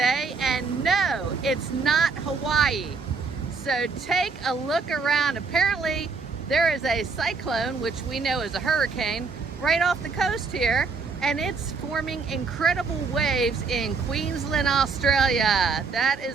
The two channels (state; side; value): quieter; left; 4.7 dB